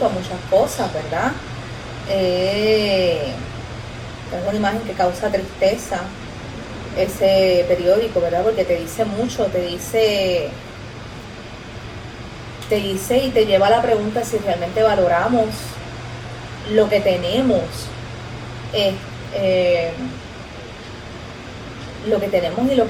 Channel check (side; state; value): both; identical; correlation 1.00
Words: a muchas cosas, ¿verdad? Es una imagen que causa tristeza ese periódico, ¿verdad? Porque te dice mucho, te dice y te lleva a la pregunta si realmente valoramos lo que tenemos, eh, eh, lo que tenemos y lo